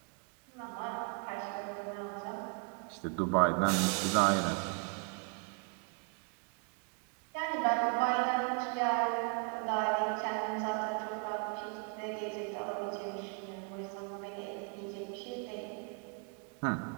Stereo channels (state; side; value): quieter; left; 37.1 dB